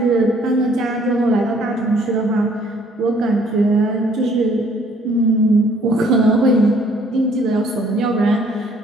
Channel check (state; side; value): normal; both; correlation 0.61